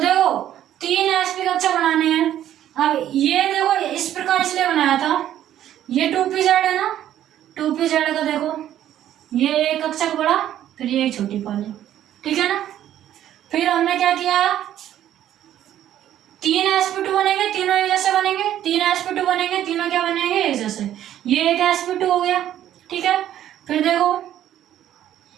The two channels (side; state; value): left; quieter; 11.6 dB